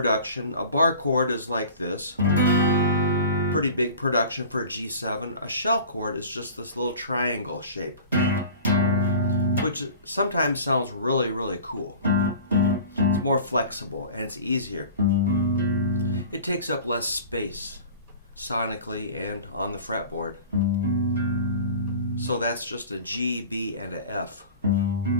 A bar chord is like this. Pretty big production for a G7. A shell chord is just this little triangle shape, which sometimes sounds really, really cool. It's more flexible and it's easier. It takes up less space sonically and on the fretboard. So that's just a G, B, and a F.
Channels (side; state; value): both; inverted; correlation -0.41